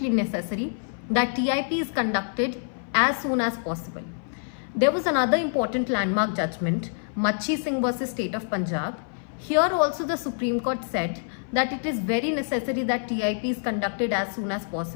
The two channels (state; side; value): silent; right; 58 dB below the other